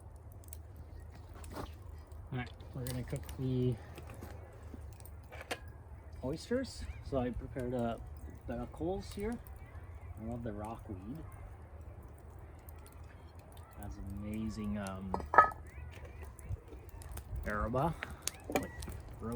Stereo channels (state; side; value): identical; both; correlation 1.00